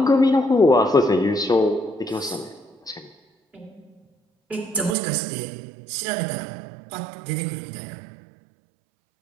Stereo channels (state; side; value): drops out; left; at 5.0 s